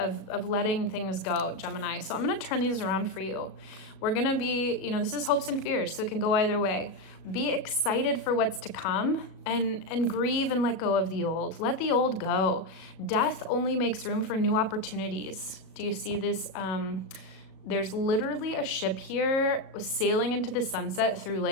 letting things go, Gemini. So I'm going to turn these around for you. We're going to be, you know, this is hopes and fears, so it can go either way. Be excited for what's to come and grieve and let go of the old. Let the old go. Death only makes room for new opportunities. Do you see this? There's literally a ship here sailing into the sunset through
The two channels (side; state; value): right; late; 37 ms